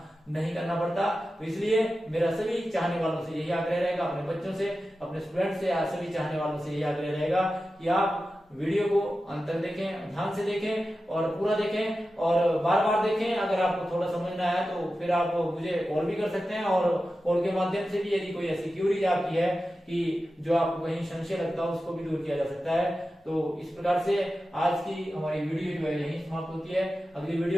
नहीं करना पड़ता। तो इसलिए मेरा सभी चाहने वालों से यही आग्रह रहेगा, अपने बच्चों से, अपने स्टूडेंट से, सभी चाहने वालों से यही आग्रह रहेगा कि आप वीडियो को अंत तक देखें, ध्यान से देखें और पूरा देखें और बार बार देखें। अगर आपको थोड़ा समझ ना आया तो फिर आप मुझे कॉल भी कर सकते हैं, और कॉल के माध्यम से भी यदि कोई ऐसी क्यूरीज आपकी है कि जो आपको कहीं संशय लगता है उसको भी दूर किया जा सकता है। तो इस प्रकार से आज की हमारी वीडियो जो है यही समाप्त होती है। अगली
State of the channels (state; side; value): normal; both; correlation 0.93